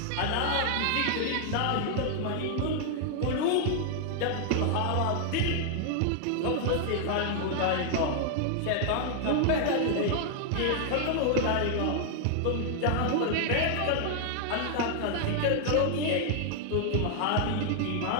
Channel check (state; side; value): different; both; correlation 0.00